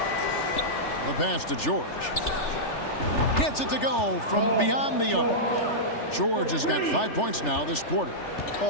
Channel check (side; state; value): right; late; 3.4 ms